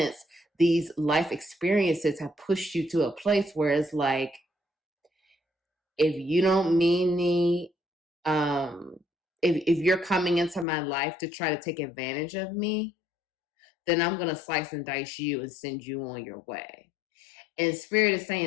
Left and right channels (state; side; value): drops out; right; at 10.7 s